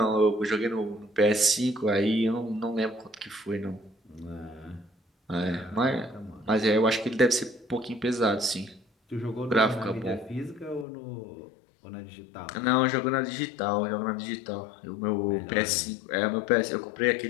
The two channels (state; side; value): drops out; right; at 10.9 s